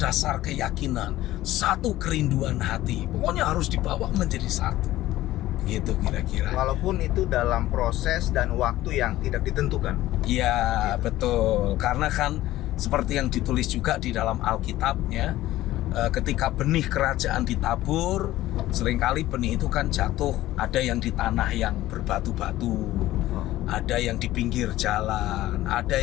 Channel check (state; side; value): quieter; right; 15.5 dB